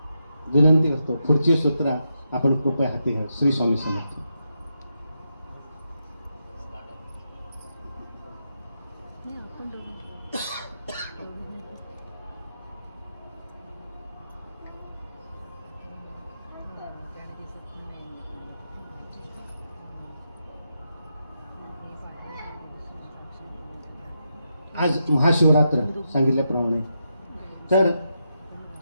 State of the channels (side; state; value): both; inverted; correlation -0.84